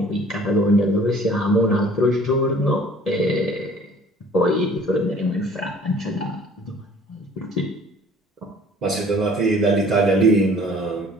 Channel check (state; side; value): normal; both; correlation 0.51